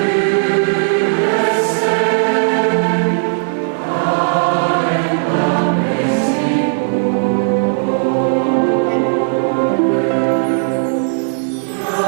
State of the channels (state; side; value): silent; left; digital silence